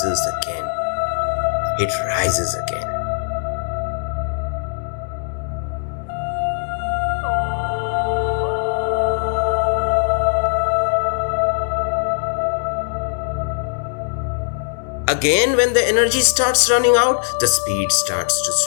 again. It rises again. Again, when the energy starts running out, the speed starts to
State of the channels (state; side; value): silent; right; 66 dB below the other